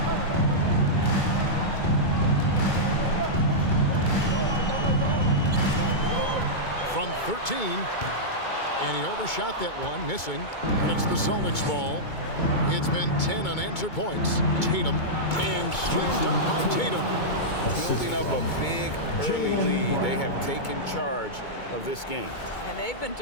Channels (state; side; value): late; right; 2.2 ms